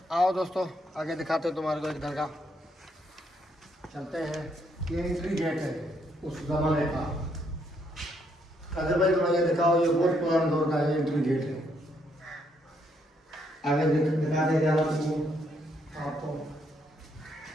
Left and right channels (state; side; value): normal; both; correlation 0.73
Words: आओ दोस्तों, आगे दिखाते हैं तुम्हारे को एक दरगाह। चलते हैं। ये एंट्री गेट है उस ज़माने का। कादिर भाई थोड़ा ये दिखाओ, ये बहुत पुराना दौर का है, एंट्री गेट है। आगे दिखा दे आपको।